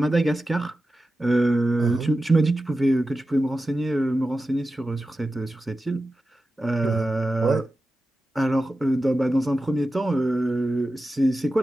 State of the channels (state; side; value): normal; both; correlation 0.93